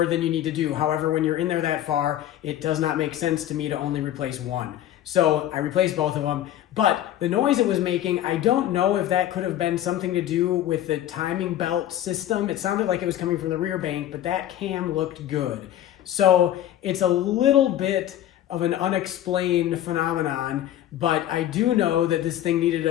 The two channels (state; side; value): quieter; right; 12.2 dB